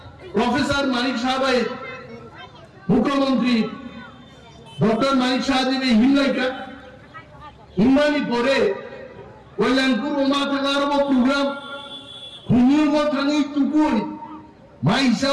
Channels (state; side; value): identical; both; correlation 1.00